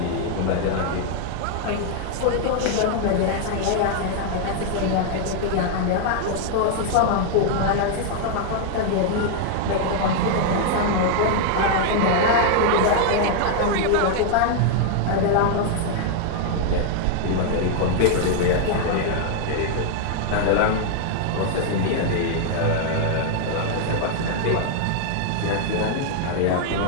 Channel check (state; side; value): different; both; correlation 0.00